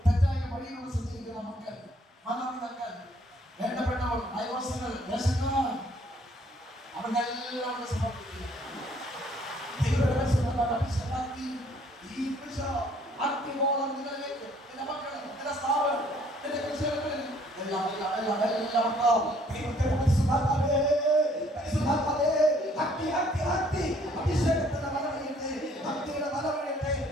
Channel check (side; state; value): both; normal; correlation 0.62